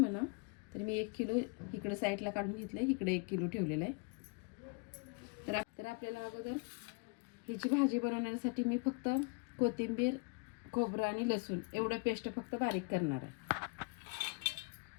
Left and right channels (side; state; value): right; quieter; 33.3 dB